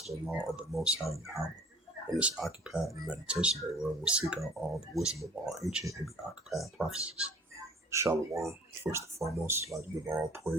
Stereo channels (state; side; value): normal; both; correlation 0.49